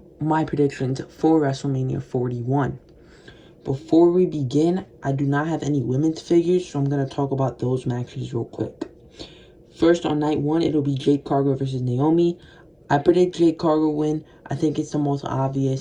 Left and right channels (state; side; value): identical; both; correlation 1.00